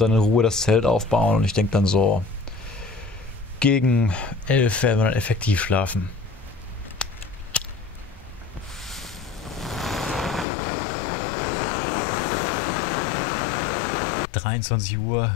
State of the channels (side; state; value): right; drops out; at 10.5 s